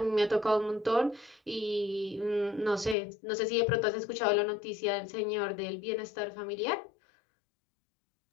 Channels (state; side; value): drops out; right; at 3.0 s